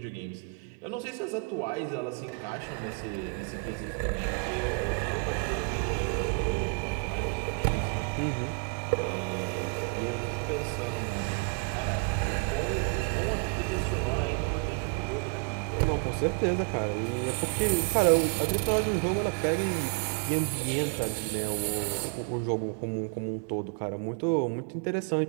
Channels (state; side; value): quieter; left; 35.8 dB